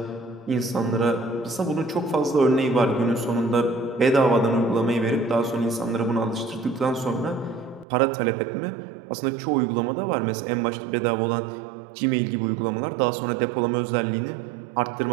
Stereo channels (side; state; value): left; drops out; at 7.9 s